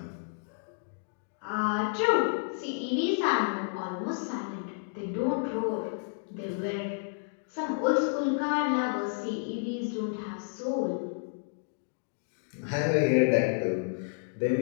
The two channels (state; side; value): silent; right; digital silence